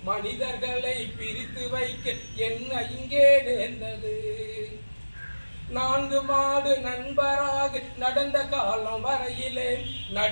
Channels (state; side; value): inverted; both; correlation -1.00